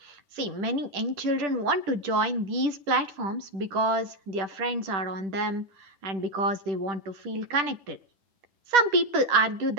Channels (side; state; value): left; late; 10 ms